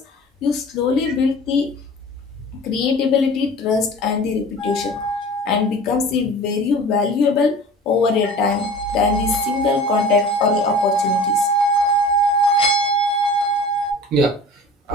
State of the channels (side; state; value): both; normal; correlation 0.40